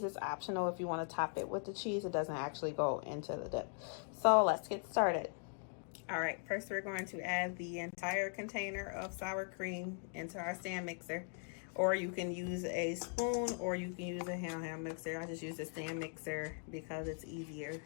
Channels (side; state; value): right; silent; 51 dB below the other